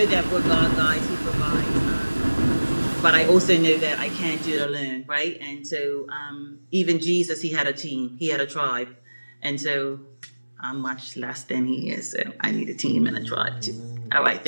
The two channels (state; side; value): inverted; both; correlation -1.00